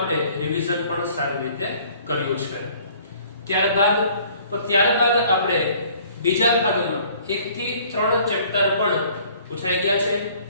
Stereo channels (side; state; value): both; inverted; correlation -0.56